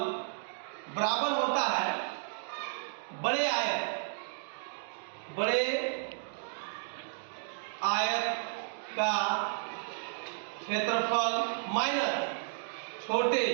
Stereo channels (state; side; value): silent; left; digital silence